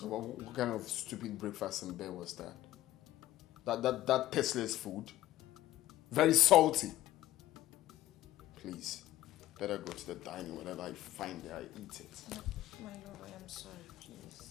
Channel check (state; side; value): quieter; right; 14.7 dB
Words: What kind of stupid breakfast in bed was that? That tasteless food? Very salty. Please, better go to the dining. Whatever I find there, I eat it. No, my love, I am sorry,